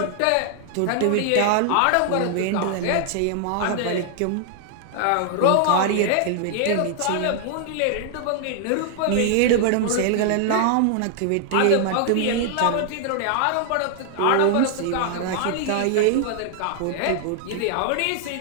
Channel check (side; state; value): both; different; correlation 0.00